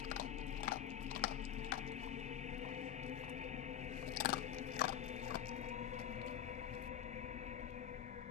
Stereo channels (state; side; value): quieter; right; 10.0 dB